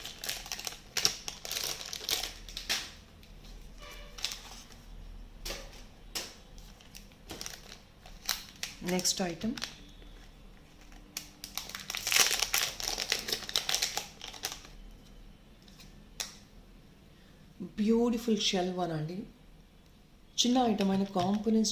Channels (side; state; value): both; identical; correlation 1.00